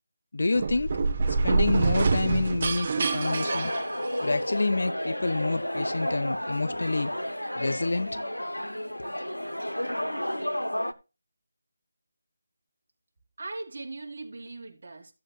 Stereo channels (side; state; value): both; inverted; correlation -0.92